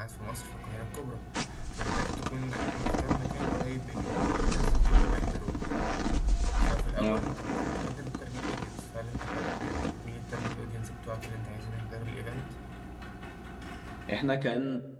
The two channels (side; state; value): both; identical; correlation 1.00